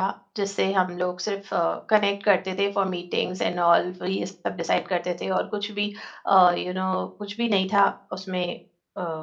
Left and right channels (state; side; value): identical; both; correlation 1.00